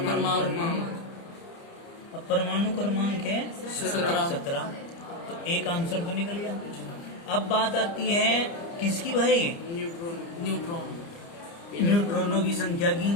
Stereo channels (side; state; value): right; late; 30 ms